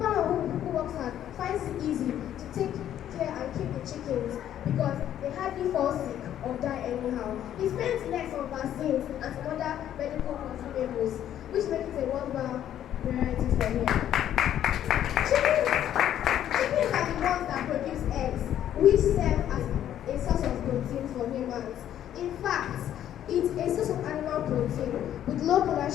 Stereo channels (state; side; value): quieter; right; 11.0 dB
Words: hard finds it easy to take care and keep the chickens because they hardly fall sick or die anyhow. He spends less on vaccines and some other medical consumables, which makes it a worthwhile priority for him. Chickens are the ones that produce eggs, which serve as a source of protein for humans. In fact, it's a source of animal protein with low